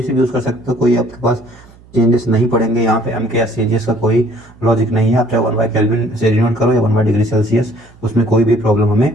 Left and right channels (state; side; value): noise; right; hum, 25 dB below the sound